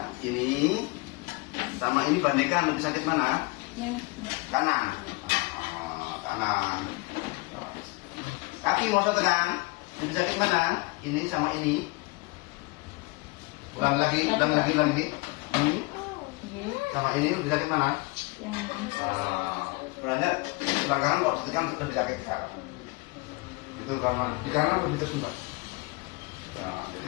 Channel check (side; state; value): right; quieter; 25.6 dB